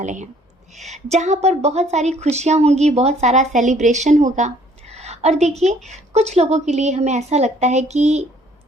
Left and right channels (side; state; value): both; normal; correlation 0.60